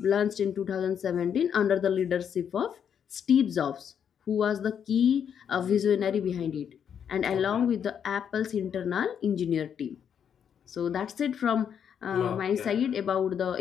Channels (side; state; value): right; quieter; 8.1 dB